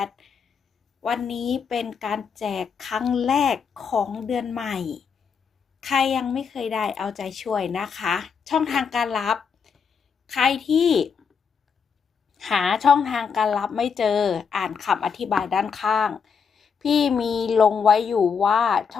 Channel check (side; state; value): right; quieter; 6.3 dB